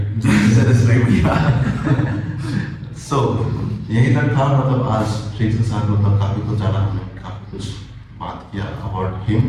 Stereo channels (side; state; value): both; identical; correlation 1.00